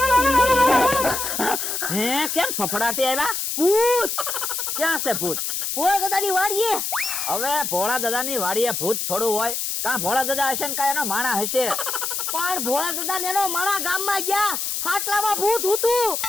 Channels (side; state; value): left; noise; hiss, 2 dB below the sound